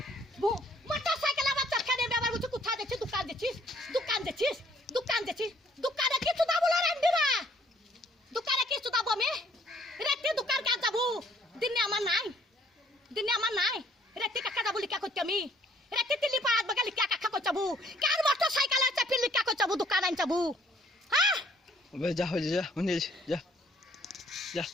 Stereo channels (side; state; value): both; normal; correlation 0.62